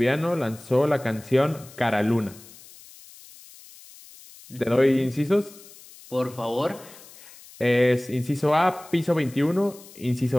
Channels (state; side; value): noise; left; hiss, 21 dB below the sound